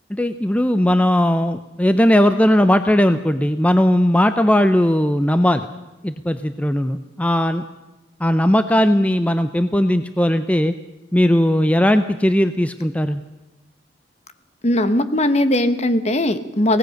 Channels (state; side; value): normal; both; correlation 0.89